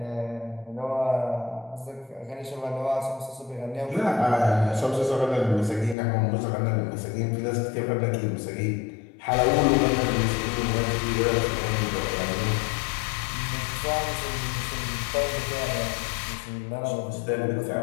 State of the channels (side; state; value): right; drops out; at 6.0 s